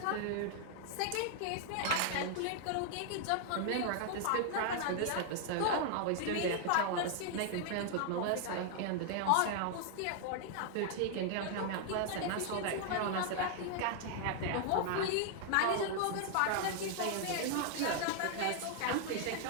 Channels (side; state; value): both; different; correlation 0.00